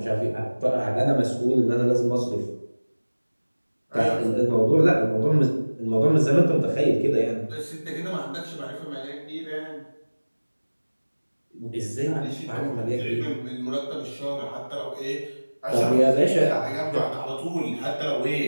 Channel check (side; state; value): both; inverted; correlation -1.00